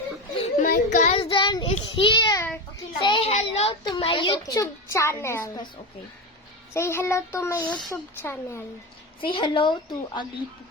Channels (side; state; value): both; normal; correlation 0.19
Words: My cousin is here. Say hello to my YouTube channel. Say hello to my YouTube channel. Say hello to Ugly